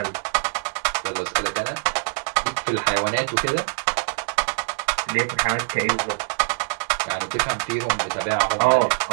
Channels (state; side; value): silent; left; 63 dB below the other